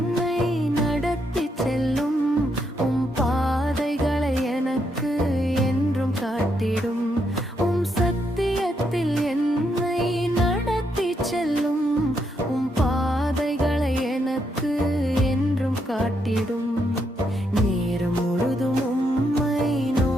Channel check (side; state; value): both; normal; correlation 0.78